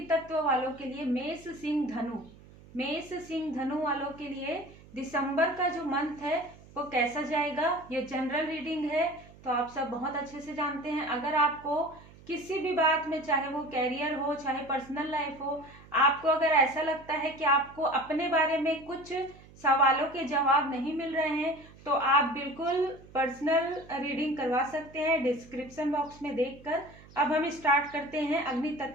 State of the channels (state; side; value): noise; right; hum, 22 dB below the sound